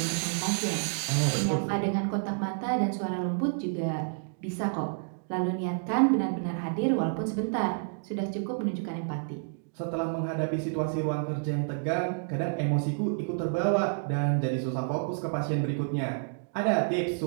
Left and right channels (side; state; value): left; silent; digital silence